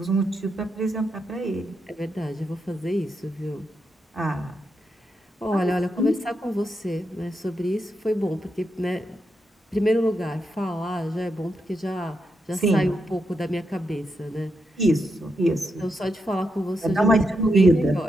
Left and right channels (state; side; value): normal; both; correlation 0.83